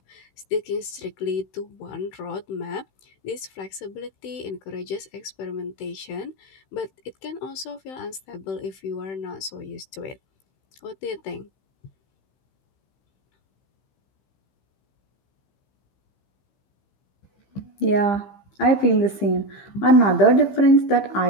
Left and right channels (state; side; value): late; right; 16 ms